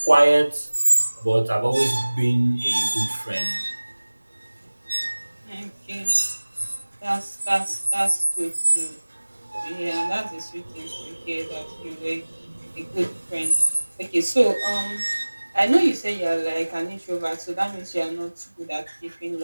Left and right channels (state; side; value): inverted; both; correlation -1.00